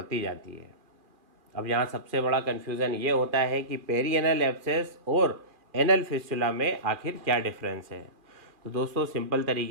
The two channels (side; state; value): left; late; 2.4 ms